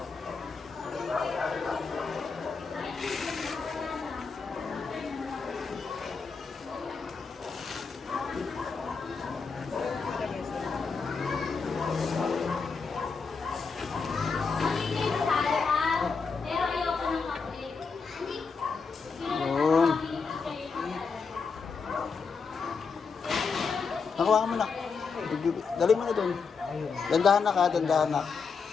Nakuha mo na. Dali mo na doon. Dandahan na ka, dandahan na.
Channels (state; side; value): quieter; right; 5.1 dB